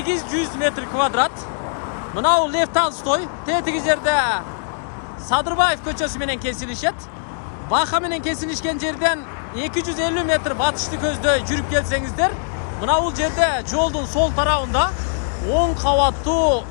метр квадрат. Мынау Лев Толстой, тетиги жерде Садырбаев көчөсү менен кесилишет. Бака менен кесилишкен жерден 250 метр батышты көздөй жүрүп келсеңиздер, мына бул жерде жолдун сол тарабында 10 кабаттуу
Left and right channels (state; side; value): silent; right; digital silence